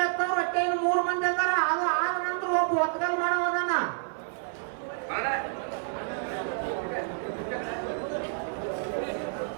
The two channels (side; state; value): left; silent; 59 dB below the other